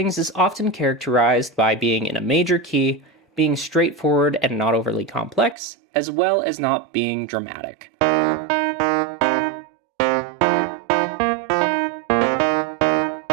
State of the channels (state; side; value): drops out; left; at 5.6 s